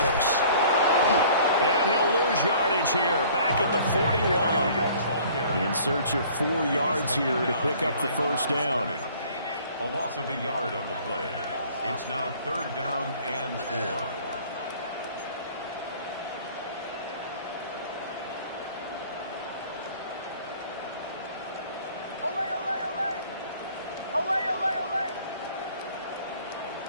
And he'll lose yardage here, back at the 41. In search of 4 yards here to pick up the first down. A loss of a yard on the play. It's now 3rd down and 4.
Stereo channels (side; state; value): both; inverted; correlation -0.52